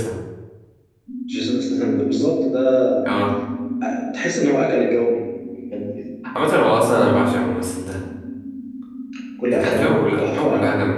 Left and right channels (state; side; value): identical; both; correlation 1.00